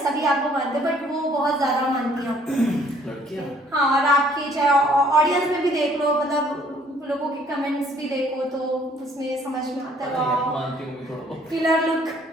सभी आपको मानते बट वो बहुत ज़्यादा मानती हैं आपको। लड़कियां हाँ और आपकी चाहे ऑडियंस में भी देख लो, मतलब लोगों के कमेंट्स भी देखो तो उसमें समझ में आता है मानती हूँ थोड़ा बहुत।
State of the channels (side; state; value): both; normal; correlation 0.61